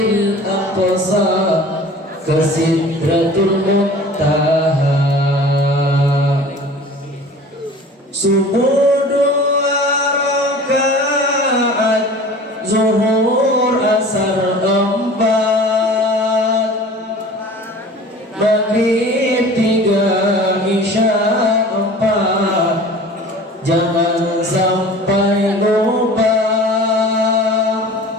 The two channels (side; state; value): both; normal; correlation 0.42